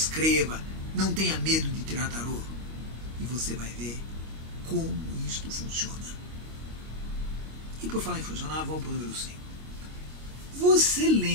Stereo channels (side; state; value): left; late; 25 ms